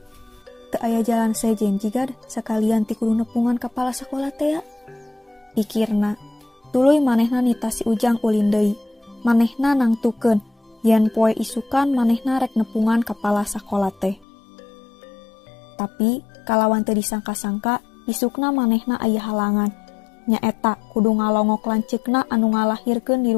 Teu aya jalan sejen jigad sakalian ti kudu nepungan kapala sakola teh ya. Pikirna, tuluy manehna nita si Ujang ulin deui. Manehna nangtukeun yen poe isukan manehna rek nepungan kapala sakola teh. Tapi kalawan teu disangka-sangka isukna manehna aya halangan. Nyaeta kudu ngalongok lanceukna anu ngalahirkeun di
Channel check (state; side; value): drops out; right; at 14.2 s